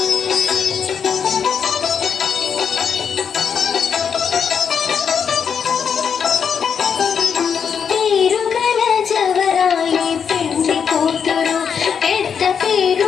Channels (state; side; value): quieter; right; 7.0 dB